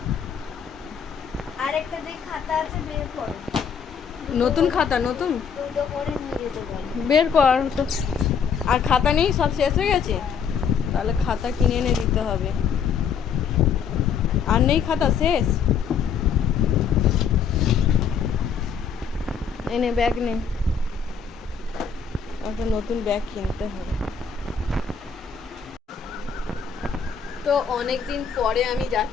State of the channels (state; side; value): quieter; right; 6.7 dB